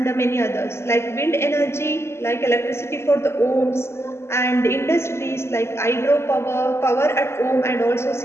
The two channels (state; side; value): late; right; 0.12 ms